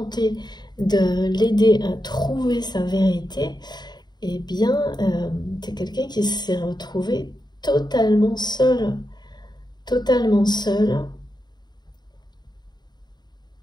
de l'aider à trouver sa vérité, eh bien, c'est quelqu'un qui s'est retrouvé totalement seul. Totalement seul.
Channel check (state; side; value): late; right; 0.20 ms